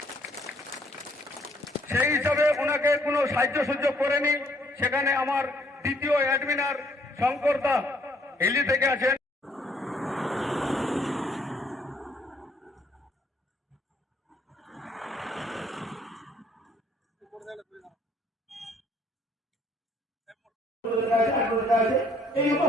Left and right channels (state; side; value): normal; both; correlation 0.65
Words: সেই হিসাবে ওনাকে কোনো সাহায্য সুযোগ করেনি। সেখানে আমার দ্বিতীয় অ্যাডমিনার শঙ্কর দা হিলি থেকে আছেন।